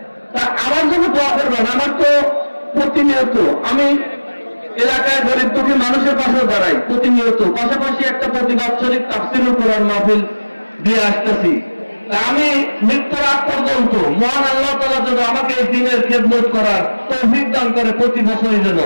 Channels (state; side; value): inverted; both; correlation -1.00